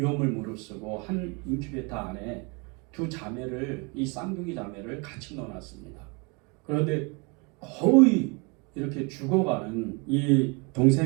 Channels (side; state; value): left; quieter; 30.8 dB